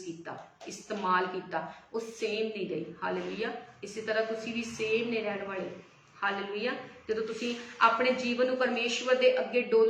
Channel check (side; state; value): both; identical; correlation 1.00